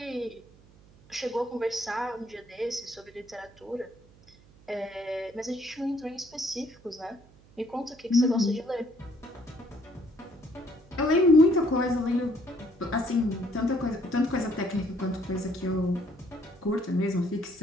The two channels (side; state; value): right; noise; hum, 26 dB below the sound